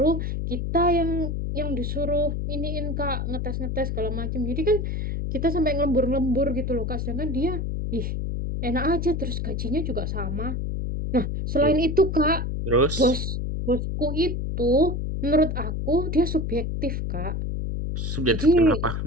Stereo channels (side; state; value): left; noise; hum, 2 dB below the sound